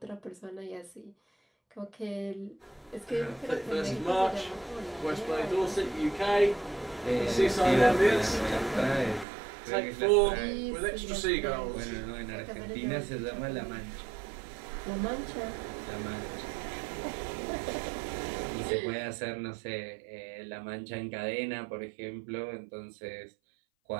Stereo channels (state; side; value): drops out; left; at 9.2 s